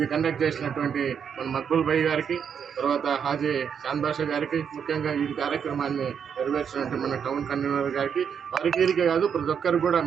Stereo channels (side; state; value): left; quieter; 7.4 dB